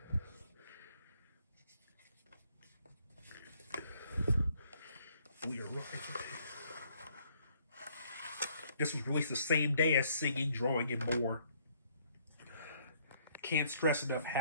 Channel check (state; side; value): inverted; both; correlation -0.66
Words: This was released the same day as Singing, Drawing, and More. Can't stress enough